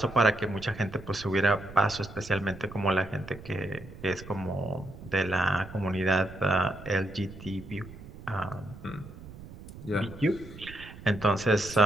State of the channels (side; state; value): right; noise; rumble, 15 dB below the sound